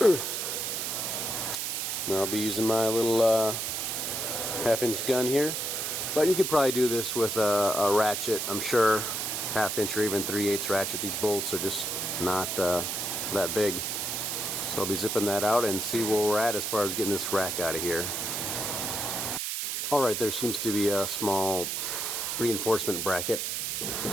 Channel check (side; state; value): right; noise; hiss, 2 dB below the sound